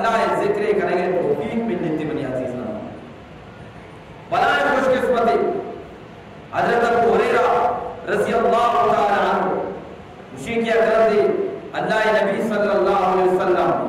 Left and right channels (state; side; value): identical; both; correlation 1.00